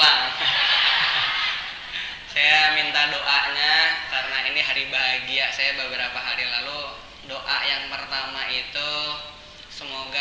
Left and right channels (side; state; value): both; identical; correlation 1.00